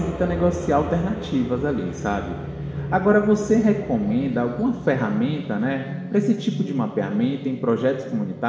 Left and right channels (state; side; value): identical; both; correlation 1.00